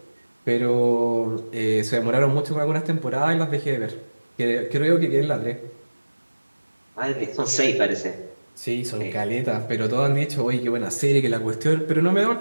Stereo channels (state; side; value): inverted; both; correlation -1.00